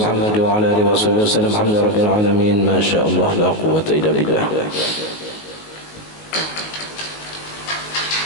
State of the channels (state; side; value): late; right; 19 ms